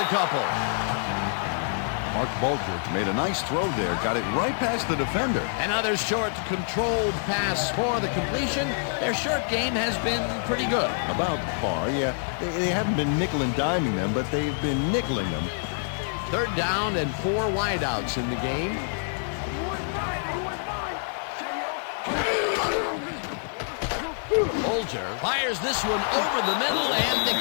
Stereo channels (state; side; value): silent; right; digital silence